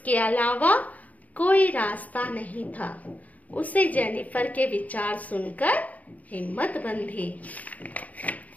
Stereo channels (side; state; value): right; late; 0.073 ms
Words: अलावा कोई रास्ता नहीं था। उसे जेनिफर के विचार सुनकर हिम्मत बंधी।